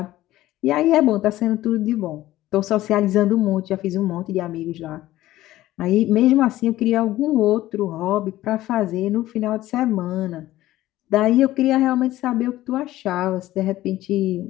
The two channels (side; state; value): right; quieter; 15.4 dB